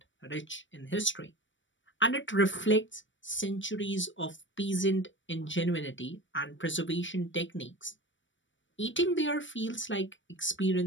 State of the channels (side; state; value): right; late; 0.55 ms